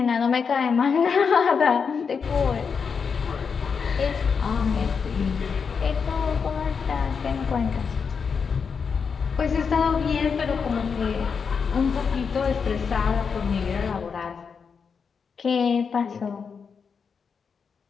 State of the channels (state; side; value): quieter; right; 5.9 dB